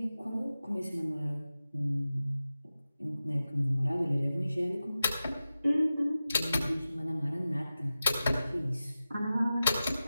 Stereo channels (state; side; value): inverted; both; correlation -0.94